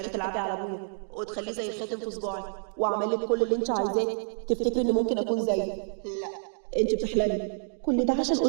تلعبي على ابويا وتخليه زي الخاتم في صباعي واعمل لك كل اللي انت عايزاه تفتكري اني ممكن اكون زيي؟ لا انت بتحلمي. كل ده عشان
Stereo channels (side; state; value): left; silent; digital silence